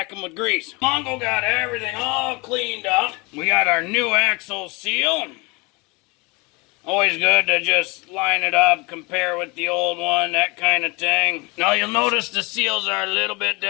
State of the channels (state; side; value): quieter; right; 26.9 dB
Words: them with grease. Mongo got everything all cleaned up. We got our new axle seal. Always good to just line it up, compare with the old one, that kind of thing. Now you'll notice the seals are a little bit